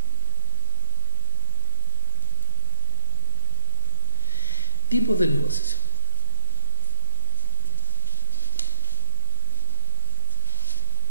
Tipos de negociación.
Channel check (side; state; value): both; inverted; correlation -0.99